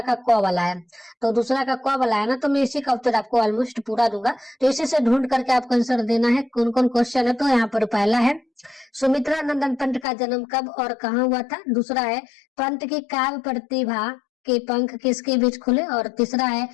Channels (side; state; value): right; drops out; at 10.1 s